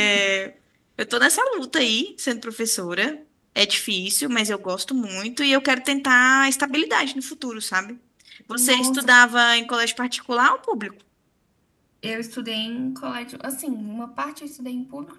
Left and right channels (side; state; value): both; identical; correlation 1.00